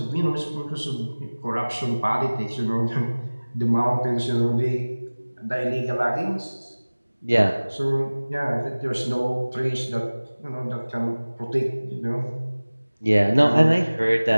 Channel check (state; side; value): inverted; both; correlation -1.00